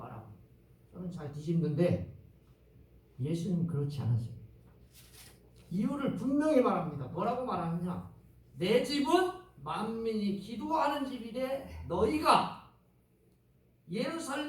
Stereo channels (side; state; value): both; identical; correlation 1.00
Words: 저는 잘 뒤집는데 예수님은 그렇지 않으세요. 이유를 분명히 말합니다. 뭐라고 말하느냐? 내 집은 만민이 기도하는 집이되 너희가